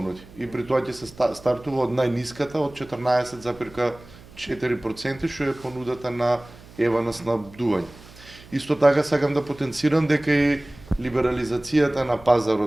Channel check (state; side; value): noise; right; hum, 21 dB below the sound